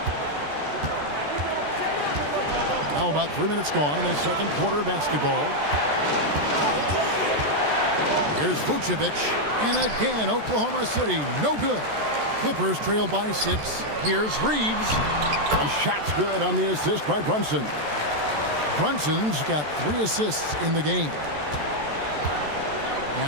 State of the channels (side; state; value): left; late; 14 ms